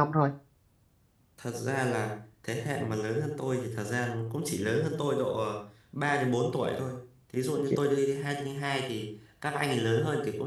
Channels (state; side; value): identical; both; correlation 1.00